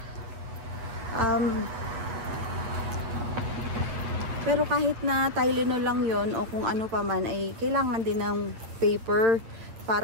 pero kahit na Tylenol lang yon o kung ano pa man, ay kailangan din ng paper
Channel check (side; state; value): left; late; 8.7 ms